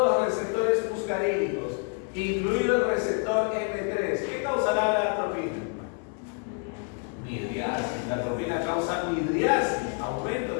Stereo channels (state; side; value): quieter; right; 38.7 dB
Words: los receptores muscarínicos, incluido el receptor M3, ¿qué causará la atropina? Midriasis. La atropina causa midriasis, aumento